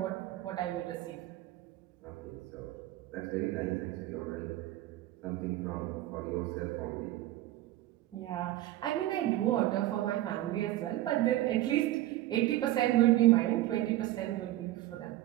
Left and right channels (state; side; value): quieter; left; 15.2 dB